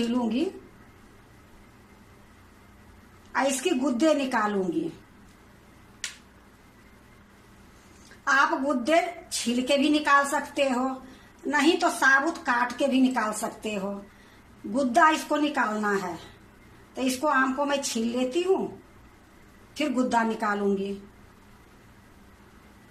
और इसकी गुद्दे निकालूंगी। आप गुद्दे छील के भी निकाल सकते हो, नहीं तो साबुत काट के भी निकाल सकते हो। गुद्दा इसको निकालना है तो इसको आम को मैं छील लेती हूँ, फिर गुद्दा निकालूंगी।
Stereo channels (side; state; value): both; identical; correlation 1.00